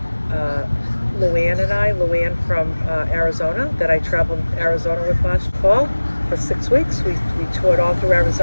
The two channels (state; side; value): inverted; both; correlation -1.00